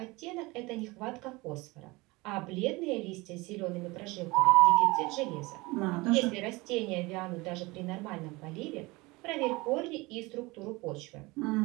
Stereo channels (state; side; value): quieter; left; 23.2 dB